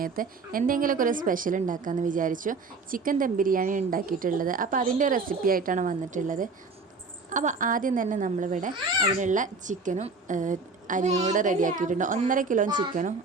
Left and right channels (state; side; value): quieter; left; 4.1 dB